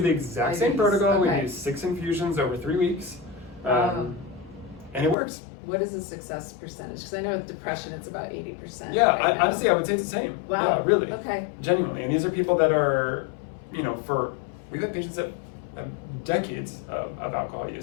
the exact same protocol. Okay. We do 6 infusions over 3 weeks, and it works. What is the success percentage? Because I know with depression it's about 80%. Yeah, honestly, I would say it's the same. Wow. Yeah, really. Okay. Genuinely, and these are people that are, we've had patients that have decades of alcohol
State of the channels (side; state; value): right; drops out; at 5.2 s